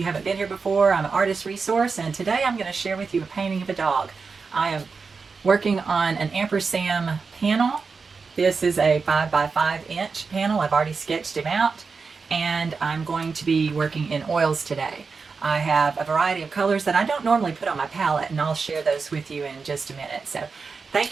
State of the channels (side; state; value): left; quieter; 4.8 dB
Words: haven't been here before, I'm an artist resource, and today I'm going to share with you a painting of a dog. I am working on an Ampersand panel. This is a 5 by 5 inch panel. I've already sketched him out, and I'm going to be working in oils today. I have a variety of colors that I don't normally put on my palette, and I'll share those with you in just a minute. So